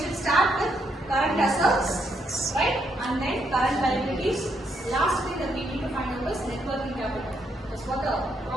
start with current assets, right, and then current liabilities. Last thing that we need to find out is net working capital. That's what the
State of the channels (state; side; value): normal; both; correlation 0.77